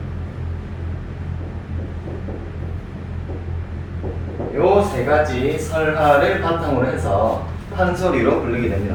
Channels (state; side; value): identical; both; correlation 1.00